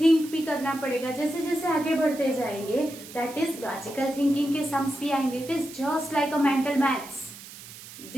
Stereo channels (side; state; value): right; noise; hiss, 16 dB below the sound